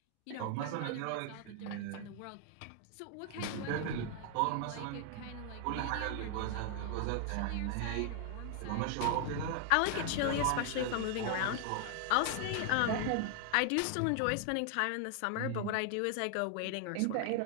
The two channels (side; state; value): both; different; correlation 0.00